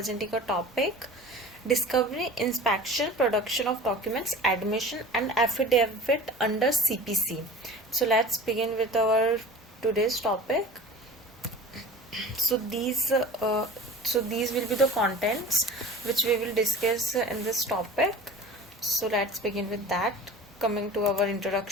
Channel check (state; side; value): normal; both; correlation 0.38